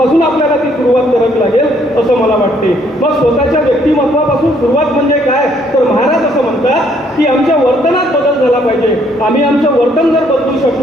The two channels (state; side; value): normal; both; correlation 0.67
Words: आपल्याला ती सुरुवात करावी लागेल असं मला वाटते. मग स्वतःच्या व्यक्तिमत्वापासून सुरुवात म्हणजे काय, तर महाराज असं म्हणतात की आमच्या वर्तनात बदल झाला पाहिजे. आम्ही आमचं वर्तन जर बदलू